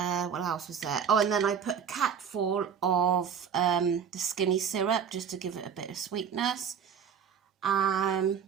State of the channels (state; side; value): quieter; left; 7.4 dB